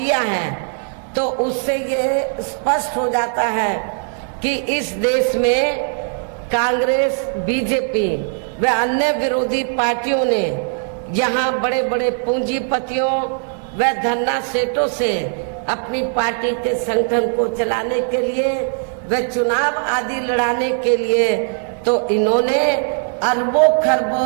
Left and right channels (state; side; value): silent; left; 56 dB below the other